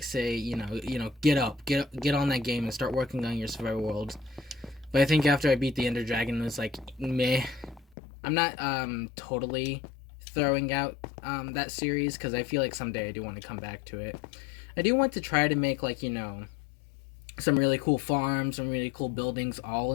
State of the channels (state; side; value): drops out; right; at 8.0 s